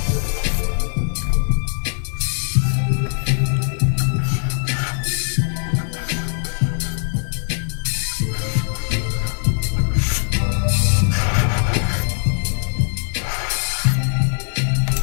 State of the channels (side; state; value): right; silent; digital silence